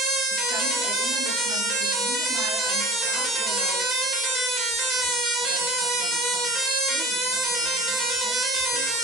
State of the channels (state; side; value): normal; both; correlation 0.41